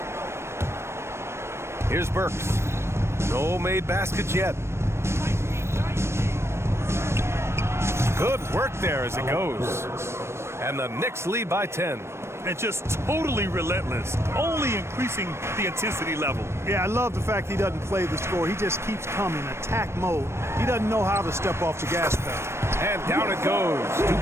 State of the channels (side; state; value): left; late; 0.13 ms